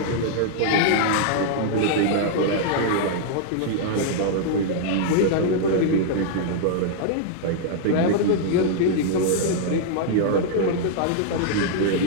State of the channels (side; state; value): both; different; correlation -0.01